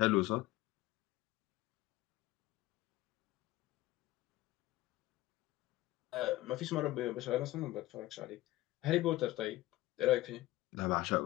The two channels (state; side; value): quieter; right; 17.5 dB